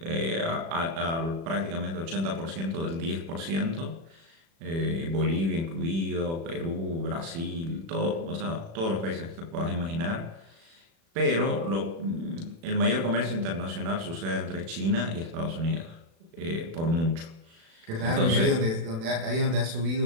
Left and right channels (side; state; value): left; late; 36 ms